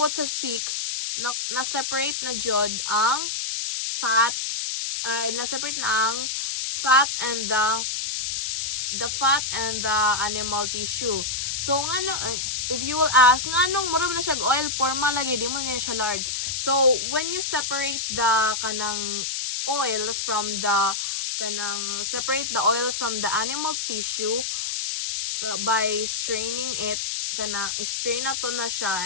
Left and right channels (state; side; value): noise; left; hiss, 2 dB below the sound